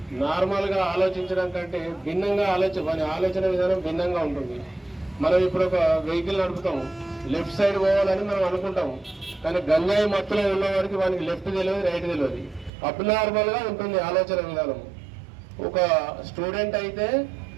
నార్మల్గా ఆలోచించడం కంటే భిన్నంగా ఆలోచన విధానం భిన్నంగా ఉంటుంది. మనం ఇప్పుడు ఒక వెహికల్ నడుపుతాము, లెఫ్ట్ సైడ్ పోవాలని మనం అనుకుంటాము, కానీ గంజాయి మత్తులో ఉన్న వారికి వానికి లెఫ్ట్ తెలియదు, రైట్ తెలియదు. అబ్నార్మల్గా ఉంటుంది ఆలోచన విధానం. ఒక స్టూడెంట్ అయితే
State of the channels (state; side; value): drops out; left; at 12.7 s